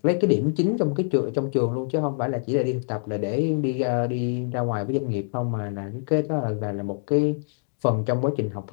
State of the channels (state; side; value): silent; right; digital silence